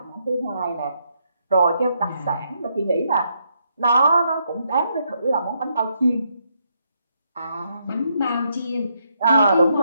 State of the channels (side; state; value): both; inverted; correlation -0.76